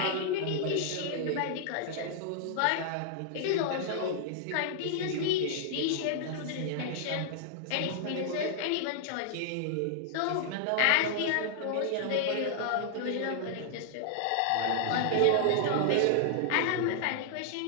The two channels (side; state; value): both; different; correlation -0.01